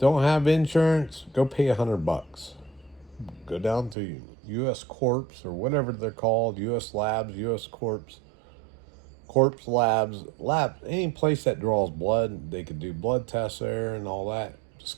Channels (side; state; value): left; drops out; at 4.0 s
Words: have insurance? Go pay $100. Go down to U.S. Corps or whatever they're called, U.S. Labs, U.S. Corps, Corpse Labs, any place that draws blood. They could do blood tests there and all that.